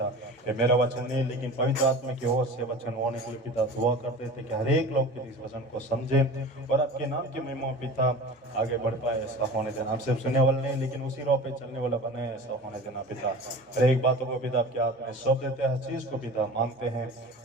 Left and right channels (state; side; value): normal; both; correlation 0.37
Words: ये मेरा वचन नहीं लेकिन पवित्र आत्मा की ओर से वचन होने के लिए पिता दुआ करते थे कि हर एक लोग इस वचन को समझे और आपके नाम की महिमा पिता आगे बढ़ पाए। ऐसा होने देना। हम सिर्फ सुनने वाले नहीं लेकिन उसी राह पे चलने वाला बने, ऐसा होने देना पिता। हर एक बातों को पिता आपके हाथ में सौंप देते हैं, हर चीज को पिता मांगते हैं